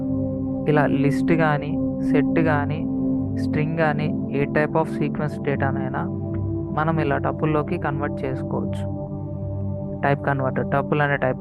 ఇలా లిస్ట్ కానీ, సెట్ కానీ, స్ట్రింగ్ కానీ, ఏ టైప్ ఆఫ్ సీక్వెన్స్ డేటానైనా మనం ఇలా టపుల్లోకి కన్వర్ట్ చేసుకోవచ్చు. టపుల్ అనే టైప్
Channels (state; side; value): identical; both; correlation 1.00